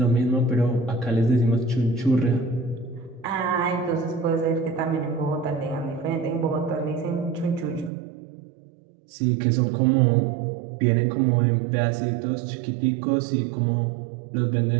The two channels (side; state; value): left; drops out; at 7.9 s